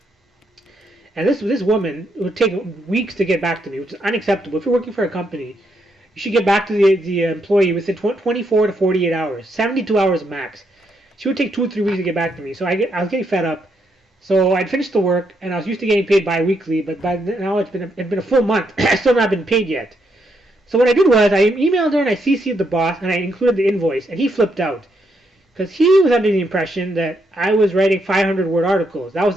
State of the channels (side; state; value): both; normal; correlation 0.78